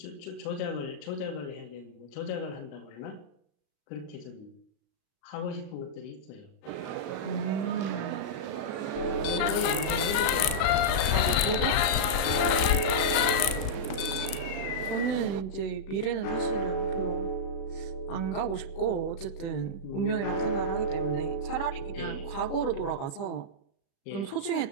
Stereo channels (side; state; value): right; late; 36 ms